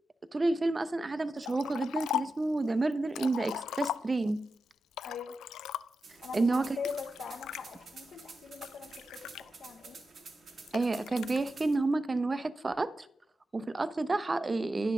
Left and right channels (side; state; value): both; normal; correlation 0.90